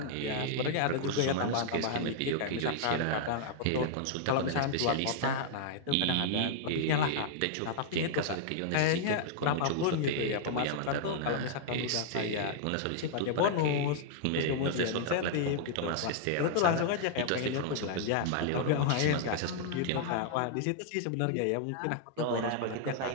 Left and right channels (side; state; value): both; different; correlation -0.01